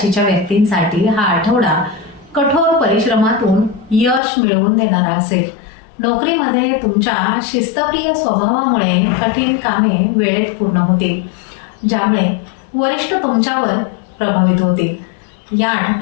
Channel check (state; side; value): drops out; right; at 4.2 s